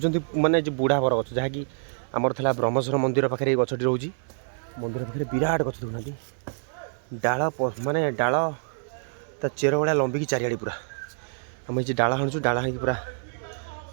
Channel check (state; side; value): silent; left; digital silence